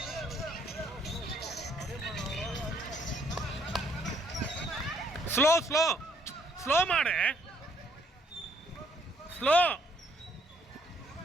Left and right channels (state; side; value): normal; both; correlation 0.67